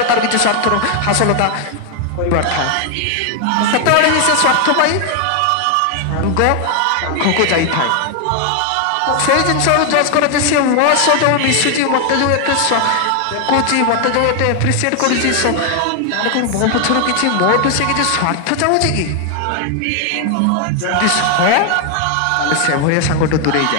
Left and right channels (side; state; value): both; different; correlation 0.00